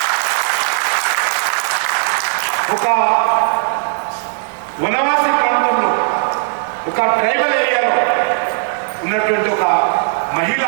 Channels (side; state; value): left; silent; 61 dB below the other